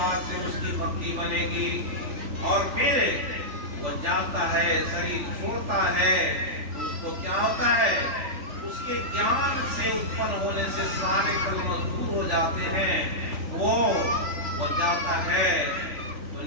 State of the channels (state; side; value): late; left; 3.4 ms